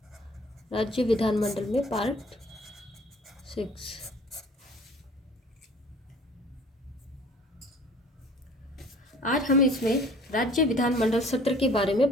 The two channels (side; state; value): both; normal; correlation 0.51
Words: राज्य विधानमंडल में पार्ट 6। आज हम इसमें राज्य विधानमंडल सत्र के बारे